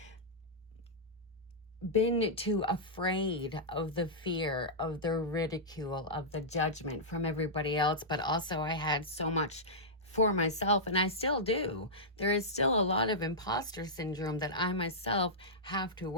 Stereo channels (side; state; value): both; normal; correlation -0.12